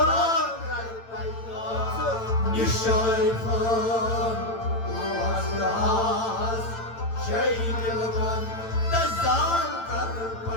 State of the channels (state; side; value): late; right; 8.9 ms